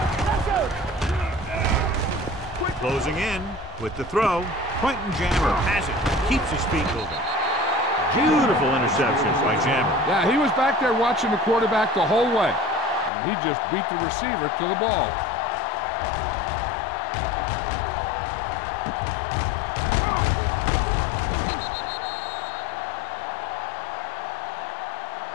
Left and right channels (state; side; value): drops out; right; at 13.1 s